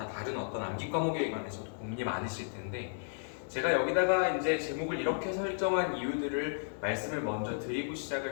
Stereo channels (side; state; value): right; silent; digital silence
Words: 다른 어떤 암기 과목에 관해서도 고민이 많으실 텐데, 제가 여기다가 이제 제목을 이렇게 설정한 이유들을 말씀을 먼저 드리고